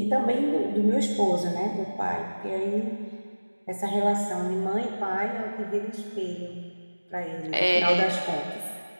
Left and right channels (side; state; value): both; inverted; correlation -1.00